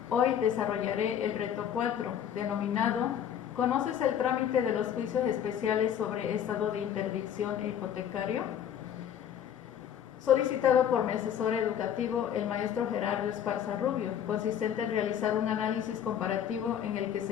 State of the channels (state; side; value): quieter; right; 9.4 dB